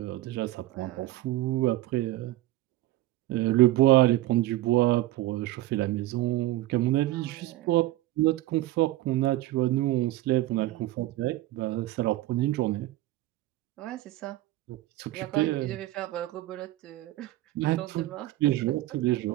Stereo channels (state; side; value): quieter; left; 16.4 dB